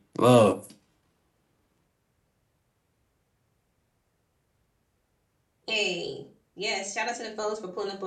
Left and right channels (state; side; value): identical; both; correlation 1.00